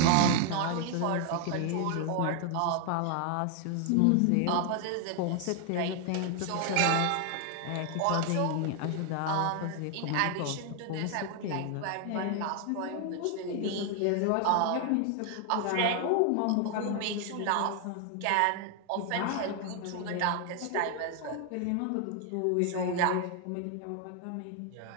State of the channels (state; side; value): different; both; correlation 0.00